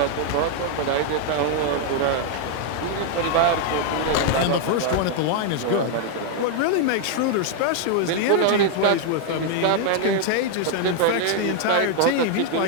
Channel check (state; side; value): different; both; correlation 0.00